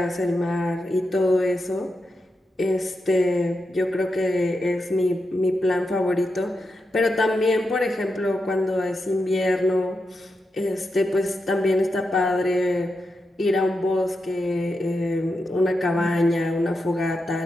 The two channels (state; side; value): normal; both; correlation 0.87